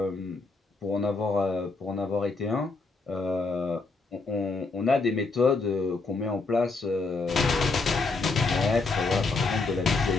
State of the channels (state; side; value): quieter; right; 3.9 dB